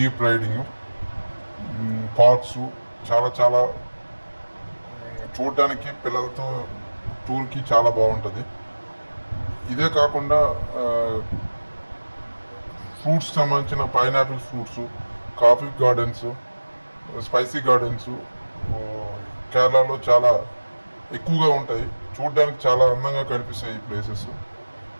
రైడింగ్, పార్క్స్ చాలా చాలా చూడడానికి పిల్లలతో టూర్కి చాలా బాగుంటుంది. ఇదే కాకుండా ఫ్రూట్స్ సంబంధించిన pineapple fruits, coffee gardens, spicy gardens కేరళలో చాలా ఎక్కువగా ఉంటాయి. చూడడానికి చాలా అందంగా కనిపిస్తాయి ఈ ప్లేసెస్.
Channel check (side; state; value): both; inverted; correlation -1.00